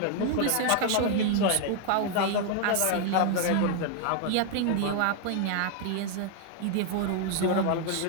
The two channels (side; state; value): both; different; correlation 0.00